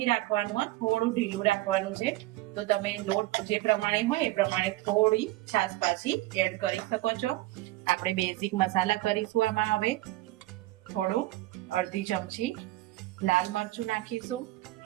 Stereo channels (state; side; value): quieter; left; 17.6 dB